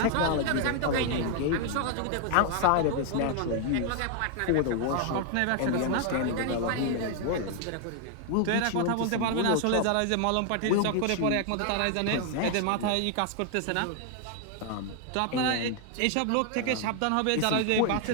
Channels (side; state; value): both; different; correlation 0.00